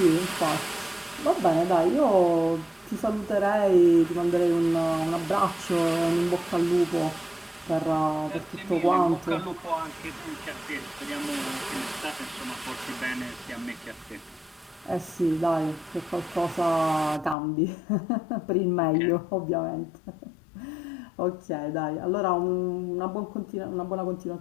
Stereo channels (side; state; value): right; drops out; at 17.4 s